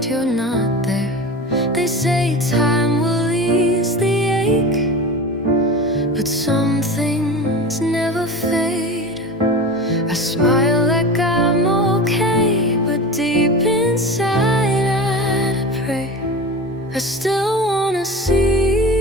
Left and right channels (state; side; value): normal; both; correlation 0.31